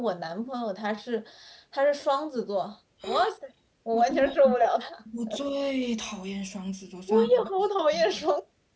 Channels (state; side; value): identical; both; correlation 1.00